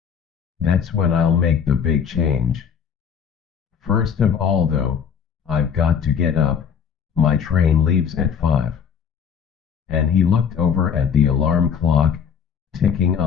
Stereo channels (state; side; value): quieter; right; 7.4 dB